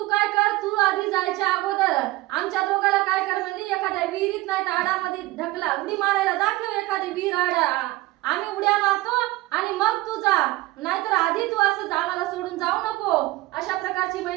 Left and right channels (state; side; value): quieter; left; 19.0 dB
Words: काय कर, तू आधी जायच्या अगोदर आमच्या दोघाला काय कर म्हणली, एखाद्या विहिरीत नाही तर आडामध्ये ढकला, उडी मारायला दाखव एखादी विहीर आडा, आम्ही उड्या मारतो आणि मग तू जा, नाहीतर आधी तू असं आम्हाला सोडून जाऊ नको. अशा प्रकारची